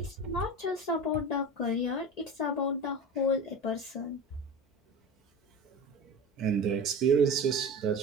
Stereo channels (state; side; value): normal; both; correlation 0.30